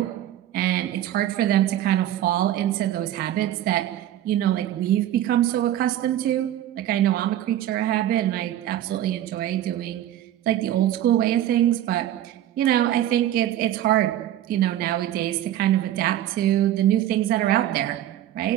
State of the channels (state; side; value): quieter; left; 12.5 dB